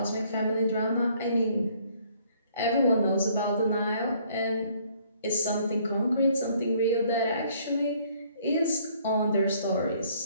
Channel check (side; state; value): both; inverted; correlation -0.62